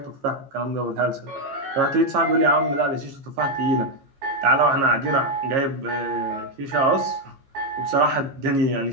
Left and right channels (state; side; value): late; left; 15 ms